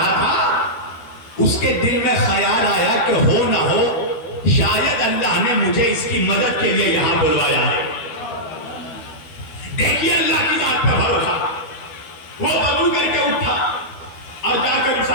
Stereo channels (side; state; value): right; late; 12 ms